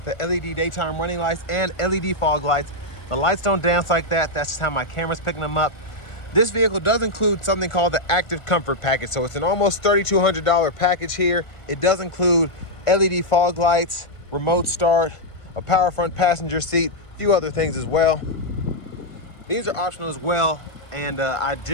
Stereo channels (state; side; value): late; right; 1.5 ms